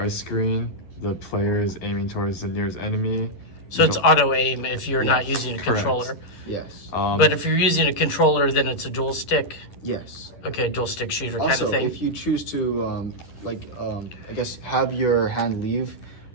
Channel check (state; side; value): late; right; 11 ms